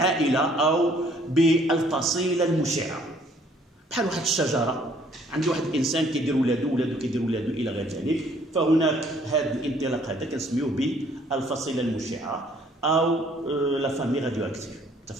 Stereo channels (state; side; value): normal; both; correlation 0.61